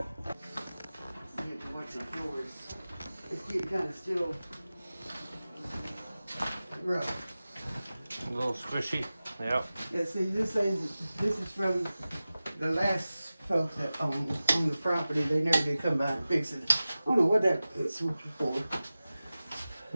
You have to watch the floors. It's getting kind of still rough. A little squishy. Yep. Yeah, see, this is from the last folks that on the property. They never did come by and fix it. I don't know what that is for.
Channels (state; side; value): inverted; both; correlation -0.96